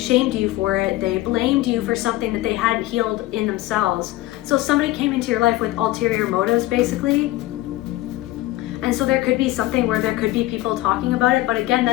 you for it. They blamed you for something that they hadn't healed in themselves. So somebody came into your life with ulterior motives, basically. And so there could be something where there could be people talking about it, but again,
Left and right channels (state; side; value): quieter; right; 17.1 dB